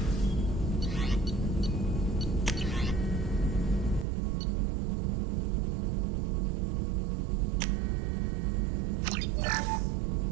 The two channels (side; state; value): left; drops out; at 4.0 s